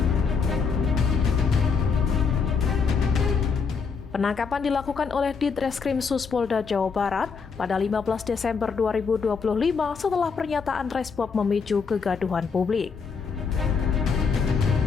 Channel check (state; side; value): quieter; right; 5.5 dB